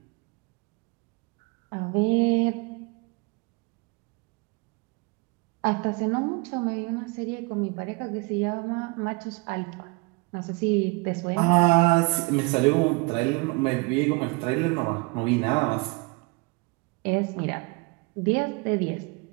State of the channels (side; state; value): left; quieter; 28.1 dB